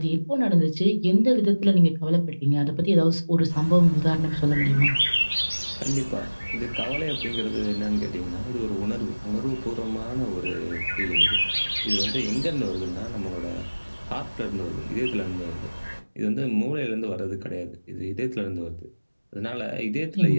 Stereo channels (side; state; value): both; inverted; correlation -1.00